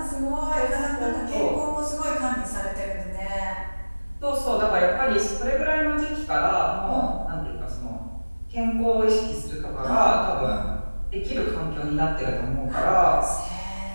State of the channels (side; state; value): both; inverted; correlation -1.00